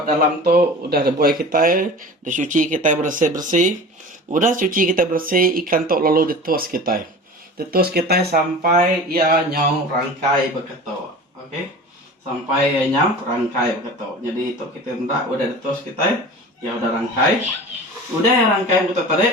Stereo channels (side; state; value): both; normal; correlation 0.37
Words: dalam tuh, udah ada buai kita, udah cuci kita bersih, udah cuci kita bersih ikan tuh lalu ditus kita sampai ya nyau rangkai begitu, oke? Sampai nyam rangkai begitu. Jadi itu kita hendak udah ditus kita ya udah rangkai rangkai begitu tadi